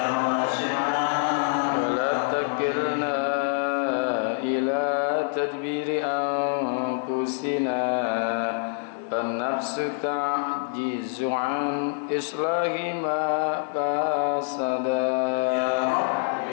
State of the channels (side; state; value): right; silent; 61 dB below the other